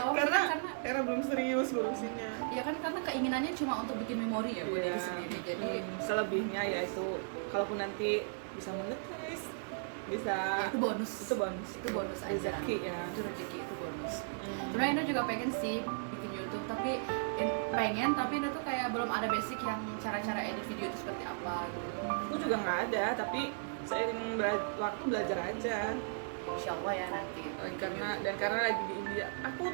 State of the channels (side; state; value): left; silent; digital silence